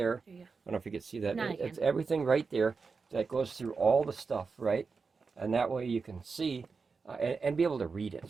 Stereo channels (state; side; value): quieter; left; 4.8 dB